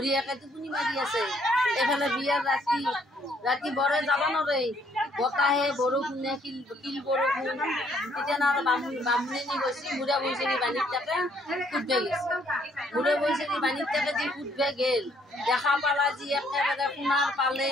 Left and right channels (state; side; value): normal; both; correlation 0.66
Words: টোপনি মাৰি আছে এইফালে বিয়াৰ ৰাতি বৰে যাব নোৱাৰে বতাহে বৰষুণে কিল বৰষুণ তেতিয়া আৰু বামুণী গৈছে মুড়া বৈচেৰি বাণীত তাকে কুটবে গৈছে মুড়া বৈচেৰি বাণীত তাকে যি কুটবে গেল দেখা পালা যি একেবাৰে সোণাৰ